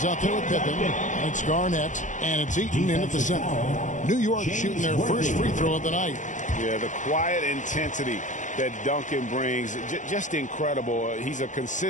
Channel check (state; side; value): late; right; 0.36 ms